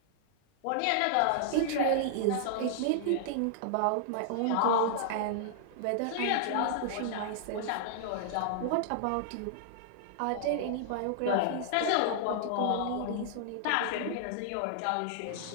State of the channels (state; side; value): different; both; correlation -0.01